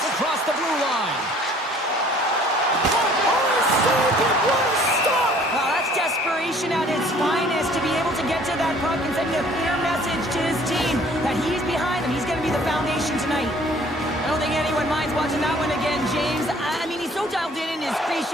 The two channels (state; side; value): normal; both; correlation 0.55